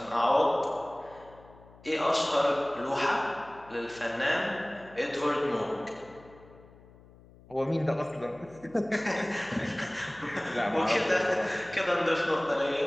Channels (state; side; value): noise; left; hum, 24 dB below the sound